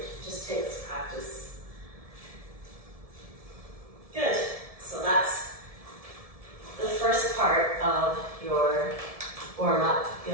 just takes practice. Good. So that's the first part of your warm-up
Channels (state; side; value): late; left; 1.7 ms